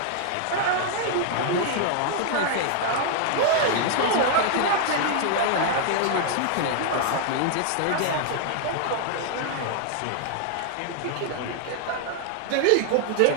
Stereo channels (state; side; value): different; both; correlation 0.00